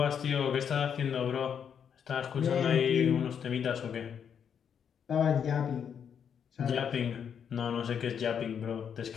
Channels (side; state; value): right; quieter; 7.8 dB